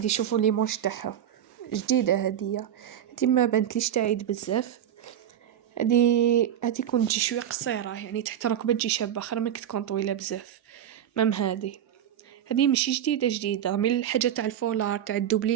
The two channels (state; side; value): quieter; left; 10.3 dB